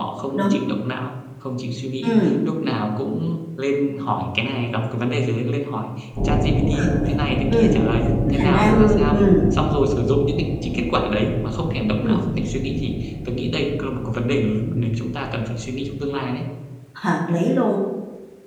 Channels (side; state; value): both; identical; correlation 1.00